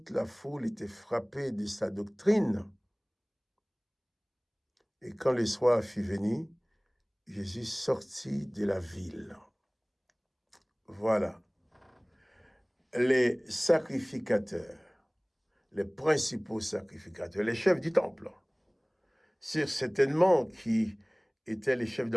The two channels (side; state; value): both; identical; correlation 1.00